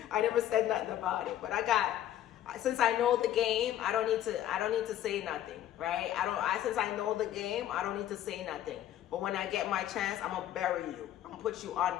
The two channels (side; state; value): right; quieter; 12.1 dB